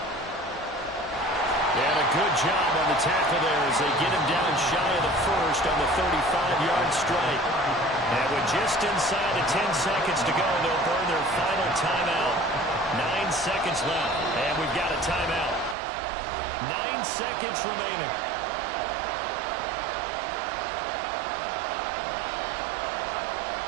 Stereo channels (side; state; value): left; drops out; at 15.8 s